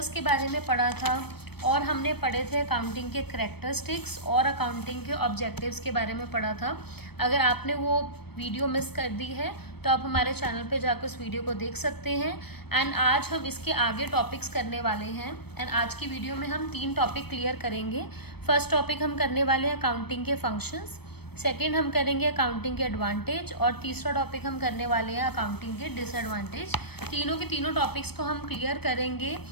के बारे में पढ़ा था, और हमने पढ़े थे अकाउंटिंग के करैक्टरिस्टिक्स और अकाउंटिंग के ऑब्जेक्टिव्स के बारे में पढ़ा था। अगर आपने वो वीडियो मिस कर दी है तो आप हमारे चैनल पे जाकर उस वीडियो को देख सकते हैं। एंड आज हम इसके आगे टॉपिक्स करने वाले हैं। एंड आज की वीडियो में हम 3 टॉपिक क्लियर करेंगे। फर्स्ट टॉपिक हम करने वाले हैं अकाउंटिंग के फंक्शंस, सेकेंड हम करेंगे अकाउंटिंग के एडवांटेज, और तीसरा टॉपिक हम करने वाले हैं अकाउंटिंग के डिसएडवांटेज। तीनों के तीनों टॉपिक्स को हम क्लियर करेंगे।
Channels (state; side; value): late; right; 0.97 ms